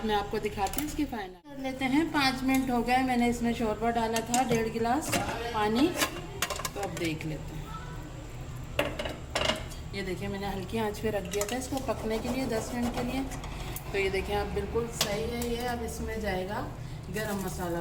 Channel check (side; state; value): both; identical; correlation 1.00